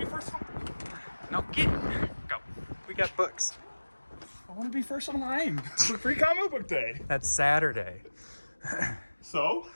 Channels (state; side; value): inverted; both; correlation -1.00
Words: be first. No, go. We got books. I want to be first online for Free Comic Book Day. That's Saturday. So?